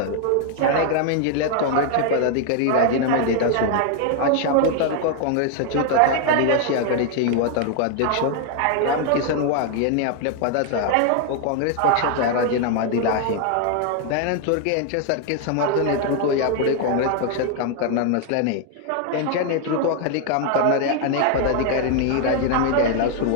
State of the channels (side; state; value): both; different; correlation 0.00